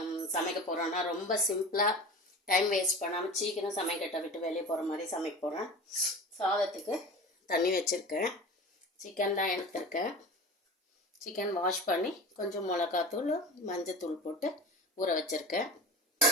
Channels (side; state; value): both; normal; correlation 0.34